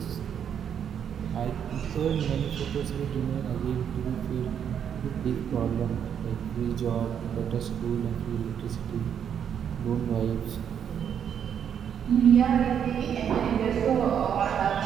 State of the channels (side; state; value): left; quieter; 8.4 dB